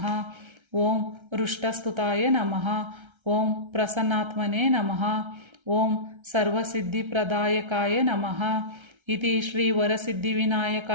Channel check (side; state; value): left; late; 1.3 ms